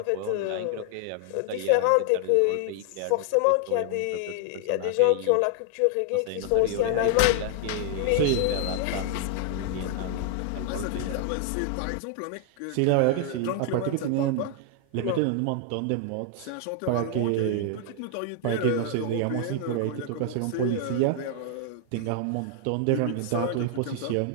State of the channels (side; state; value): both; different; correlation 0.00